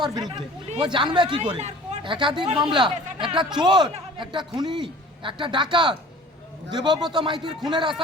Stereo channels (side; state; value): both; normal; correlation 0.46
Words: বিরুদ্ধে, ও জানবে কি করে একাধিক মামলা। একটা চোর, একটা খুনি, একটা ডাকাত, দেবব্রত মাইতির খুনের